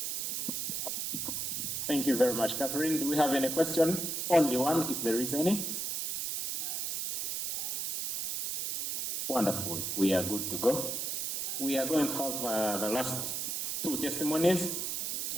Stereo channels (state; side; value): noise; right; hiss, 2 dB below the sound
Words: Thank you very much, Catherine. Do we have any question? Only one, if there is any. Wonderful. We are good to go. We are going to have the last two testimonies.